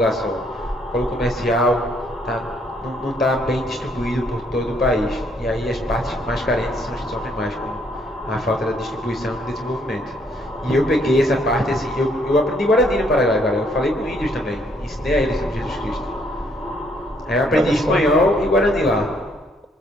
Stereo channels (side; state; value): both; normal; correlation 0.68